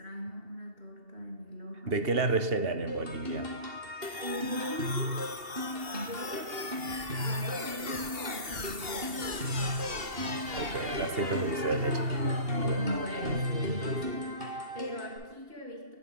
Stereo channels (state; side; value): late; left; 2.7 ms